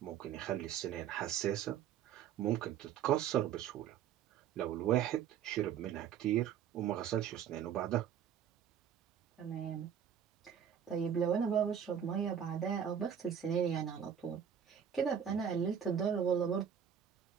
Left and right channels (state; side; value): quieter; left; 8.7 dB